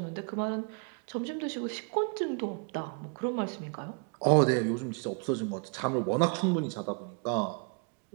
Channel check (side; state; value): left; quieter; 35.6 dB